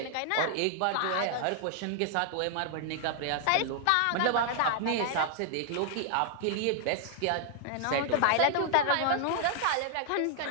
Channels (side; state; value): both; different; correlation -0.01